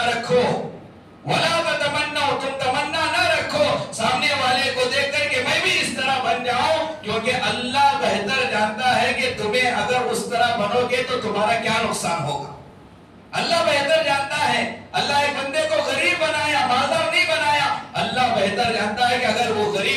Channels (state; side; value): identical; both; correlation 1.00